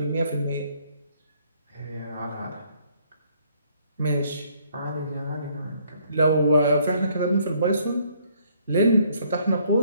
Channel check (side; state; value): both; inverted; correlation -0.66